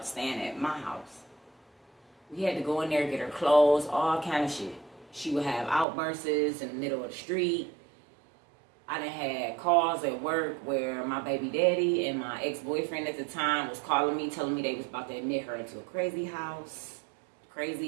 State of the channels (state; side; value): drops out; left; at 5.9 s